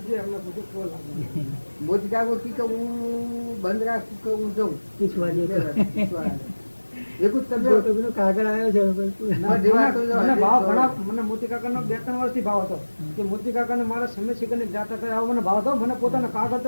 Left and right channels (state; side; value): inverted; both; correlation -1.00